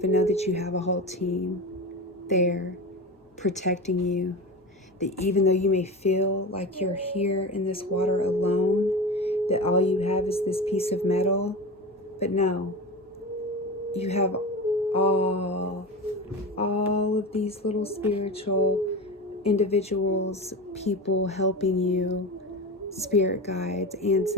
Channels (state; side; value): normal; both; correlation 0.26